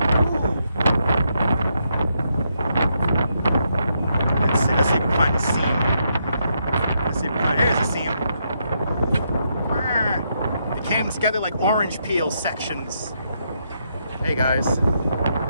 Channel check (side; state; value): both; inverted; correlation -0.79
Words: Ooh. Let's see if we can find a seam. There's a seam. It came together like orange peel sections. Hey guys,